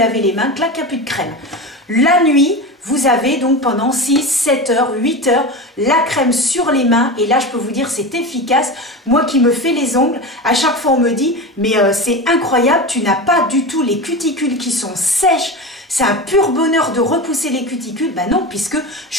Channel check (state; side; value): normal; both; correlation 0.25